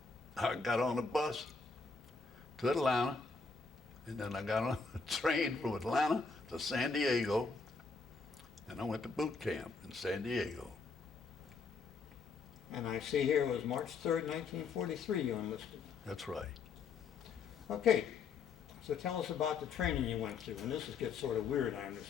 I got on a bus to Atlanta. And then I got on a train from Atlanta to San Diego, and I went to boot camp in San Diego. And I see here it was March 3rd, 1943 you enlisted. That's right. Okay, so tell us about the training you went through. And this gets sort of weird, I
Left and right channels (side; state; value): right; quieter; 4.7 dB